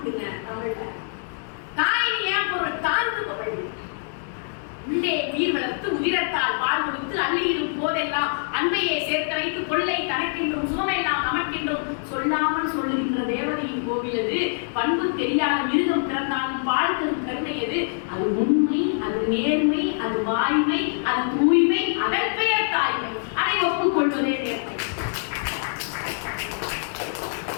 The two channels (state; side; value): silent; right; digital silence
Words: தமிழ்ல. தாயின் ஏன் பொருள்? தாழ்ந்துபவள். உள்ளே நீர் வளர்த்து உதிரத்தால் பால் கொடுத்து அள்ளியிடும் போதெல்லாம் அன்பையே சேர்த்து வைத்து கொள்ளை தனக்கென்றும் சுகமெல்லாம் நமக்கென்றும் சொல்லாமல் சொல்லுகின்ற தேவதையின் கோவிலது. பண்பு தெரியாத மிருகம் பிறந்தாலும் பால் தரும் கருணையது. அது உண்மை, அது நேர்மை, அது வாய்மை, அது தூய்மை, அதன் பெயர் தாய்மை. அதை ஒப்புக்கொள்வதே நேர்மை.